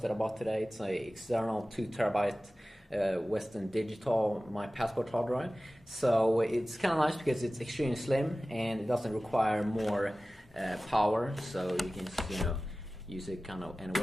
that I bought today. It's an external 2 terabyte Western Digital My Passport hard drive. So it's kind of nice because it's extremely slim and it doesn't require more power, so you can just, use it kind of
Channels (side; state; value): both; normal; correlation 0.96